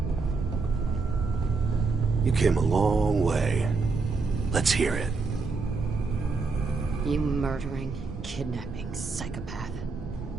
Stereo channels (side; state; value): left; quieter; 4.2 dB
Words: You came a long way. Let's hear it. You murdering, kidnapping psychopath.